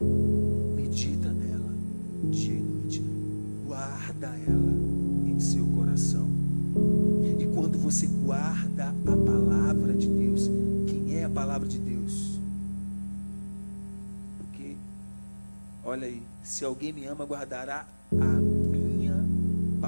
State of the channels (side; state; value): both; inverted; correlation -1.00